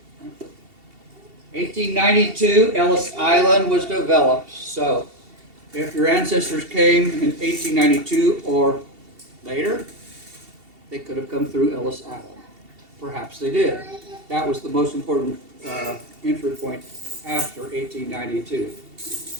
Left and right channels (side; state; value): left; late; 2.7 ms